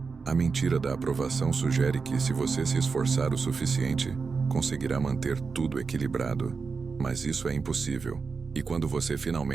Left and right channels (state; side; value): quieter; left; 4.9 dB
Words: A mentira da aprovação sugere que, se você se esforçar o suficiente, conseguirá manter tudo equilibrado. Mas isso é impossível. E quando você